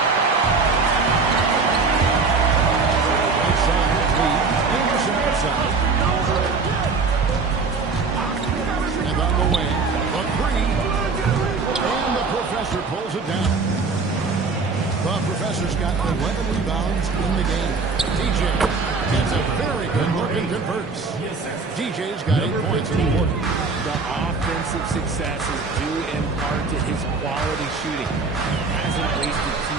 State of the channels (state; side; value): quieter; left; 4.3 dB